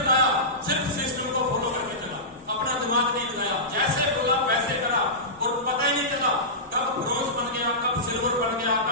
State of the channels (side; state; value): both; normal; correlation -0.17